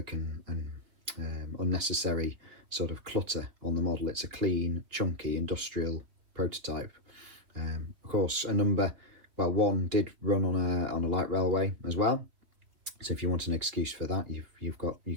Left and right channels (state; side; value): late; left; 3.2 ms